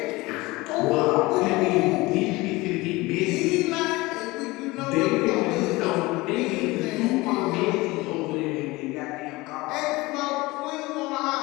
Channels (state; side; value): quieter; right; 21.6 dB